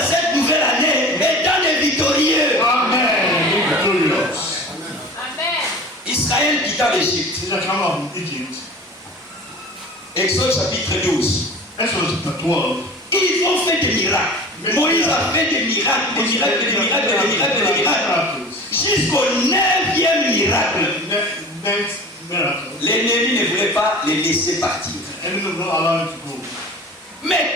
cette nouvelle année étant des victorieux. Amen. Be victorious. Amen. Israël quitta l'Égypte. Israel came out from Egypt. Exode chapitre 12. Exodus chapter 12. Ils ont fait des miracles. Moïse a fait des miracles, des miracles, des miracles, des miracles, des miracles. Jusqu'au 9e miracle. Next miracle. L'ennemi ne voulait pas les laisser partir. Enemy will not allow him to go.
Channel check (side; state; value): both; normal; correlation 0.39